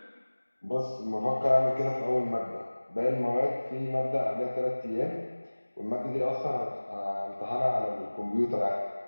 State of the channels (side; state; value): both; inverted; correlation -1.00